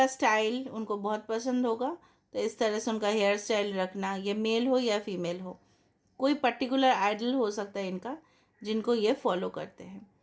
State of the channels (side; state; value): both; identical; correlation 1.00